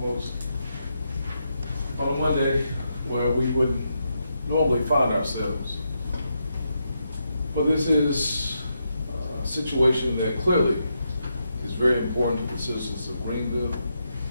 On a Monday where we wouldn't normally find ourselves. But this is a situation that clearly is very important to the citizens of Greenville,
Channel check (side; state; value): both; inverted; correlation -0.83